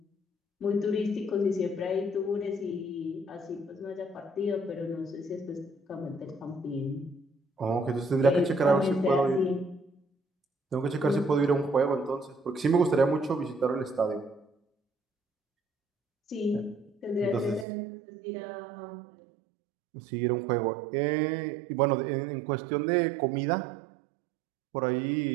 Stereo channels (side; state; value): left; drops out; at 17.7 s